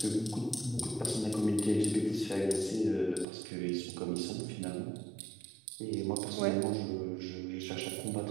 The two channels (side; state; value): left; drops out; at 3.2 s